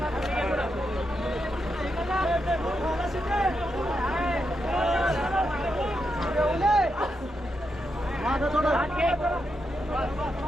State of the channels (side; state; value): both; normal; correlation 0.84